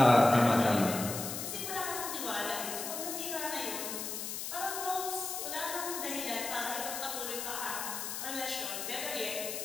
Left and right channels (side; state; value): left; noise; hiss, 5 dB below the sound